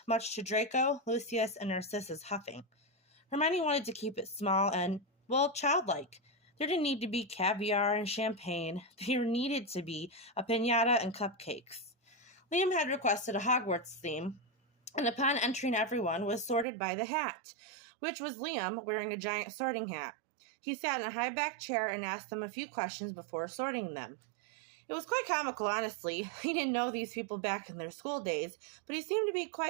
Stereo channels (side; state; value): left; drops out; at 16.7 s